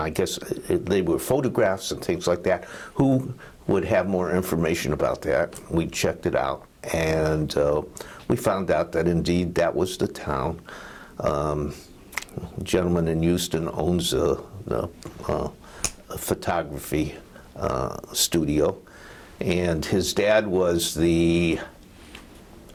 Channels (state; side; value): identical; both; correlation 1.00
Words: guess they were photographs and things like that, who would have more information about that. We checked it out, and we found out that indeed that was the town. A gentleman in Houston owns a photography studio, and his dad was the